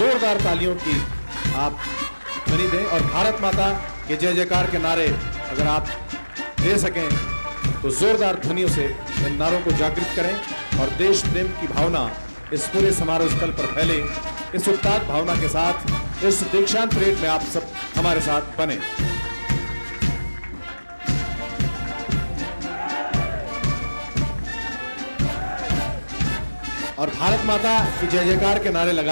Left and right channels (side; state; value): both; inverted; correlation -1.00